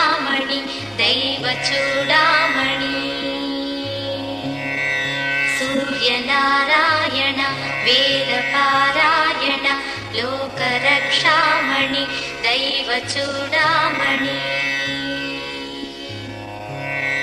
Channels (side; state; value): both; identical; correlation 1.00